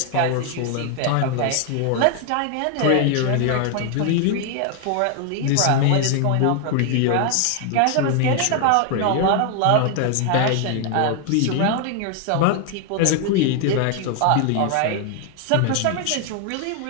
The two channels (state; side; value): different; both; correlation 0.00